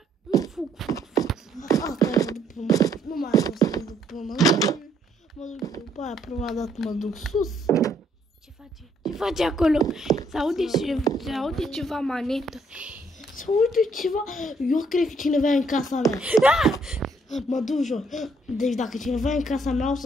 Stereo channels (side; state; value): both; normal; correlation 0.69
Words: Fug. Nu mai am să mă duc până mă duc după aia, prima dată mă duc sus. Ce face acolo? Se aude ceva manetă. Se aude ceva. Eu cred că cineva e în casa mea. Mă duc jos. Deci dacă cineva e în casa mea, o